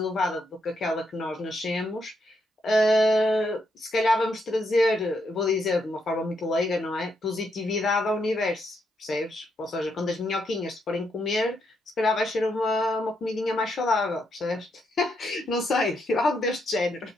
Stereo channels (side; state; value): both; normal; correlation 0.79